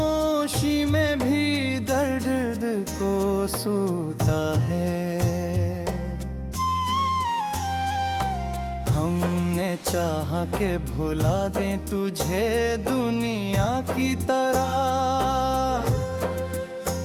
में भी दर्द को सूता है। हमने चाहा के भुला दें तुझे दुनिया की तरह,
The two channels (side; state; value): both; identical; correlation 1.00